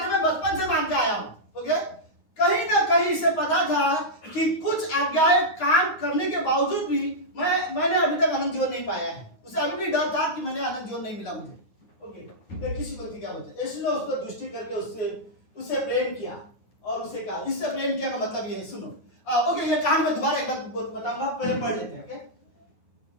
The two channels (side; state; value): right; late; 9.5 ms